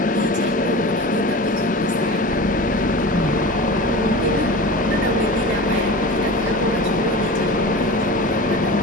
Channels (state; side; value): normal; both; correlation 0.33